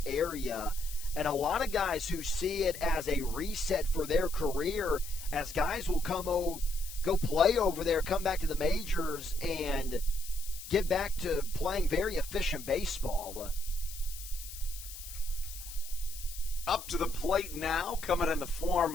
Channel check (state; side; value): noise; left; hiss, 12 dB below the sound